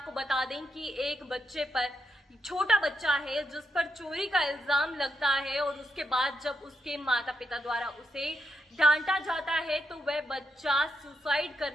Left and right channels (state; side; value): normal; both; correlation 0.82